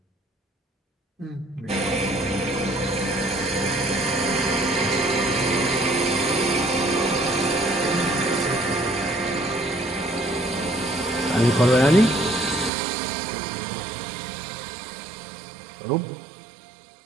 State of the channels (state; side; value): drops out; left; at 12.7 s